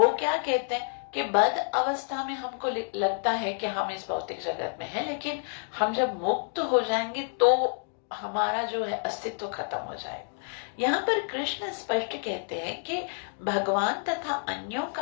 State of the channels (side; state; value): right; silent; digital silence